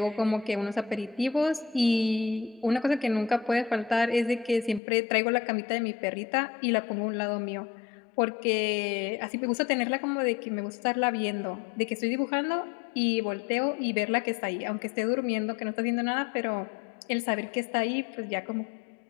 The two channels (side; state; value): right; drops out; at 4.8 s